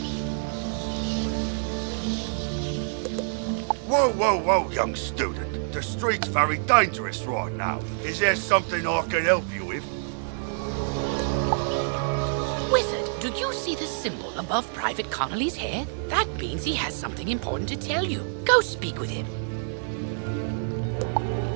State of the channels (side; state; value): left; silent; digital silence